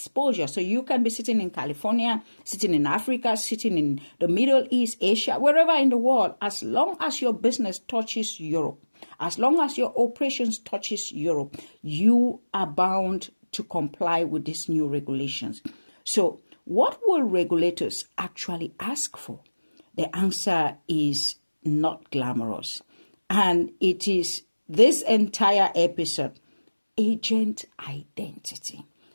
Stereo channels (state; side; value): inverted; both; correlation -1.00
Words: So you can be sitting in California, sitting in Africa, sitting in the Middle East, Asia, wherever in the world, as long as your business touches Europe, as long as your operations touches Europe, you are bound to comply with these new regulations. So what will regulators actually ask for? The answer is not glamorous. And it is this entire episode: agent identity.